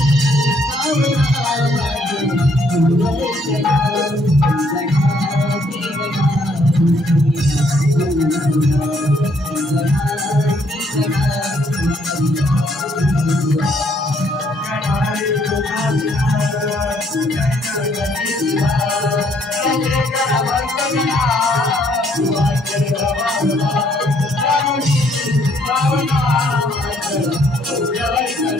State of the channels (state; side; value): normal; both; correlation 0.68